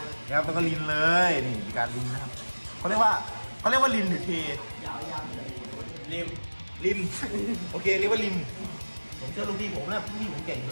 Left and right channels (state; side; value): inverted; both; correlation -1.00